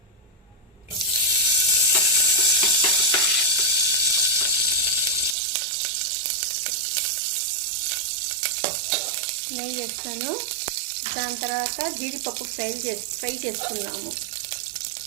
నెయ్యి వేస్తాను. దాని తర్వాత జీడిపప్పు ఫ్రై చేసుకున్నాము.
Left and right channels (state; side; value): drops out; left; at 5.4 s